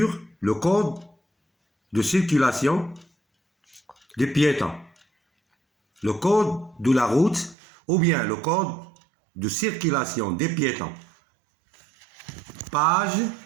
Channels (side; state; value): left; drops out; at 7.6 s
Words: le code de circulation des piétons. Le code de la route ou bien le code de circulation des piétons. Page